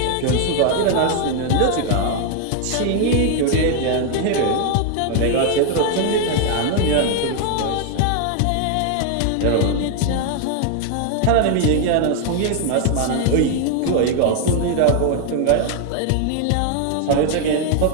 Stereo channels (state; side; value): different; both; correlation 0.00